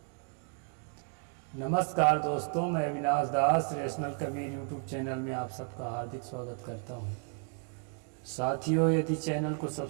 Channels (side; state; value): left; quieter; 39.0 dB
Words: नमस्कार दोस्तों, मैं अविनाश दास रेशनल कबीर यूट्यूब चैनल में आप सबका हार्दिक स्वागत करता हूं। साथियों, यदि चैनल को